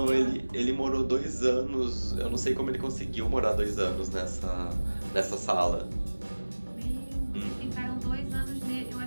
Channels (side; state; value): both; inverted; correlation -1.00